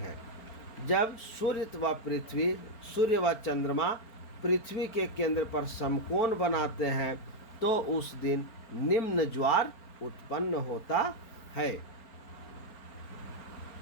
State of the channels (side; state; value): right; late; 4.4 ms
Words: जब सूर्य व चंद्रमा पृथ्वी के केंद्र पर समकोण बनाते हैं तो उस दिन निम्न ज्वार उत्पन्न होता है।